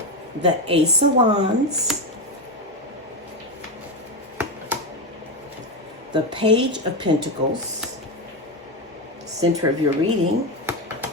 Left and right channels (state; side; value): normal; both; correlation 0.12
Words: The Ace of Wands. The Page of Pentacles, center of your reading.